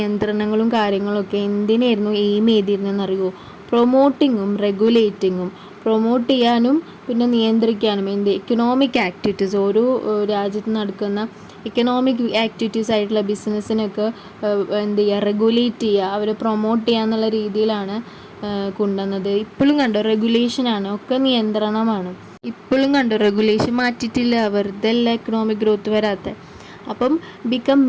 കാര്യങ്ങളൊക്കെ എന്തിനായിരുന്നു എയിം ചെയ്തിരുന്നതെന്നറിയുമോ? പ്രൊമോട്ടിങ്ങും റെഗുലേറ്റിങ്ങും. പ്രൊമോട്ട് ചെയ്യാനും പിന്നെ നിയന്ത്രിക്കാനും എക്കണോമിക് ആക്ടിവിറ്റീസ്, ഓരോ രാജ്യത്ത് നടക്കുന്ന എക്കണോമിക് ആക്ടിവിറ്റീസ് ആയിട്ടുള്ള ബിസിനസ്സിനൊക്കെ റെഗുലേറ്റ് ചെയ്യുക, അവരെ പ്രൊമോട്ട് ചെയ്യുക എന്നുള്ള രീതിയിലാണ് കൊണ്ടുവന്നത്. ഇപ്പോഴും കണ്ടോ റെഗുലേഷനാണ്, ഒക്കെ നിയന്ത്രണമാണ്. ഇപ്പോഴും കണ്ടോ റെഗുലേഷൻ മാറ്റിയിട്ടില്ല, വെറുതെ അല്ല എക്കണോമിക് ഗ്രോത്ത് വരാത്ത. അപ്പം become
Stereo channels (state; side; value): identical; both; correlation 1.00